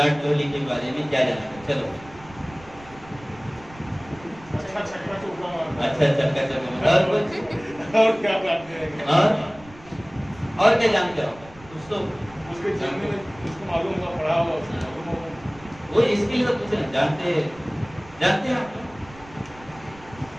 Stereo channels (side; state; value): right; noise; rumble, 21 dB below the sound